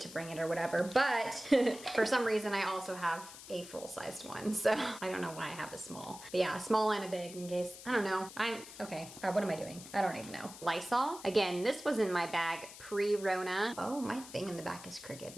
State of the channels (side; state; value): left; noise; hiss, 15 dB below the sound